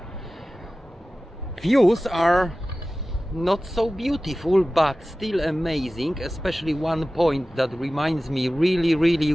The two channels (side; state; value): both; normal; correlation 0.96